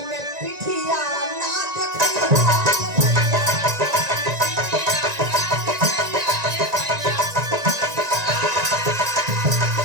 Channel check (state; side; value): late; left; 1.9 ms